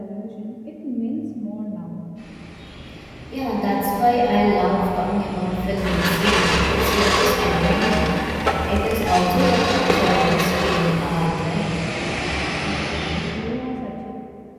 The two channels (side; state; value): both; identical; correlation 1.00